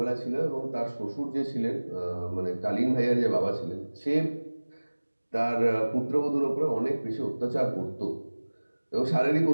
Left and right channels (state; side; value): inverted; both; correlation -1.00